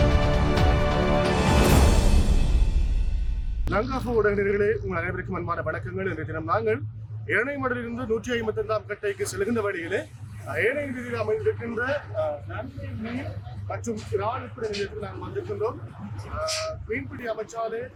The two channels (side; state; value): both; identical; correlation 1.00